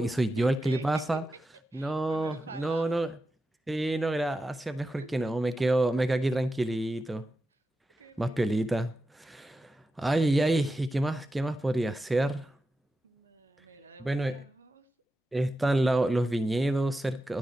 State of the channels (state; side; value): normal; both; correlation 0.91